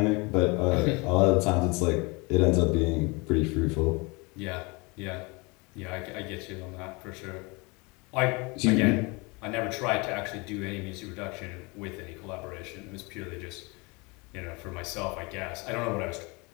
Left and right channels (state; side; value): quieter; right; 27.6 dB